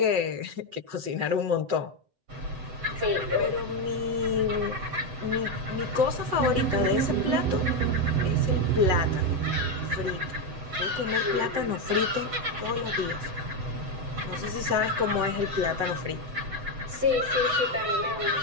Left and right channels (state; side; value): late; left; 7.9 ms